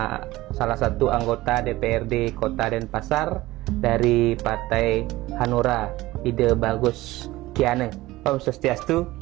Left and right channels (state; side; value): quieter; left; 18.2 dB